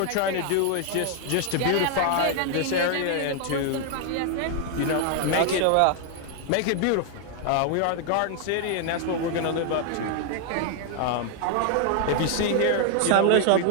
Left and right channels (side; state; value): both; different; correlation 0.00